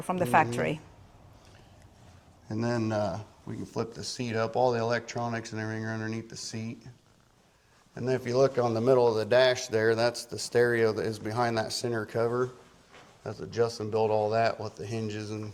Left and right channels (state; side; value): identical; both; correlation 1.00